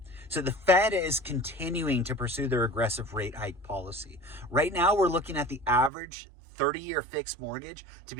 So the Fed is continuing to pursue their aggressive rate hike policy. Right now, we're looking at the average 30-year fixed mortgage to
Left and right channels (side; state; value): left; drops out; at 5.9 s